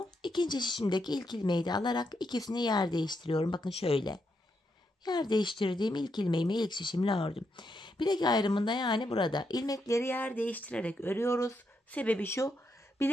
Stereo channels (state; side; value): normal; both; correlation 0.81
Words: ikinci şişimdeki ilk ilmeği de alarak ikisini yer değiştiriyorum. Bakın şöyle. Yer değiştirdiğim ilk ilmeğimi ilk şişimle ördüm. Bilek ayrımında, yani burada ilmekleri yer değiştirerek örüyoruz. Sebebi şu: